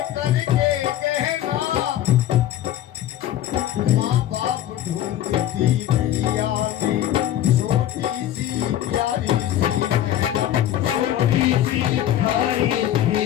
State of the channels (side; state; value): right; quieter; 12.1 dB